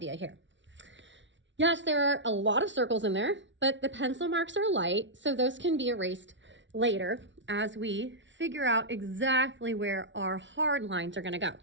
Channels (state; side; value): late; left; 0.54 ms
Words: here. Yes, there are a lot of circles in there, but the pencil marks are light, so those can be erased later as we figure out exactly where our hard lines are going to go.